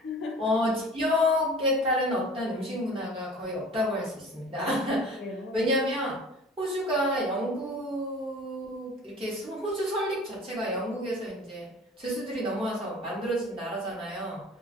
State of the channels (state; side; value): normal; both; correlation 0.43